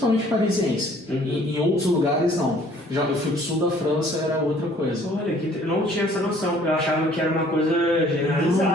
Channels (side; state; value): both; normal; correlation 0.57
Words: parisiense, em outros lugares não. Já eu fui pro sul da França, era outra coisa. Olha, eu não tinha essa noção, eu achava que era uma coisa